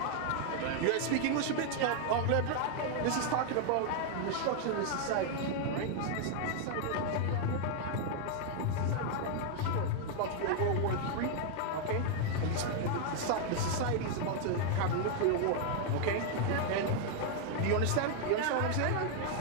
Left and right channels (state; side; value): different; both; correlation 0.00